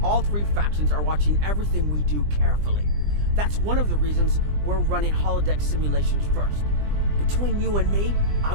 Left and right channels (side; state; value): left; late; 20 ms